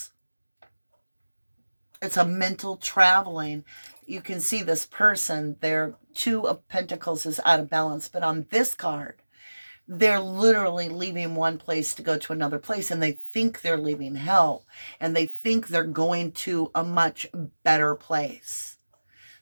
It's a mental traveling. You can see this person, their 2 of Pentacles is out of balance. But on this card, they're literally leaving one place to go to another place. And they think they're leaving hell. And they think they're going to a much better place.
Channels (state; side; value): inverted; both; correlation -1.00